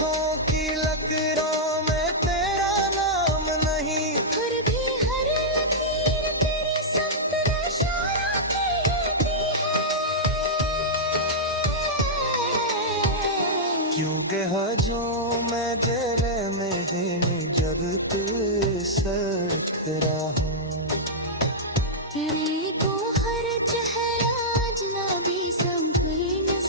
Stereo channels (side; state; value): both; normal; correlation -0.09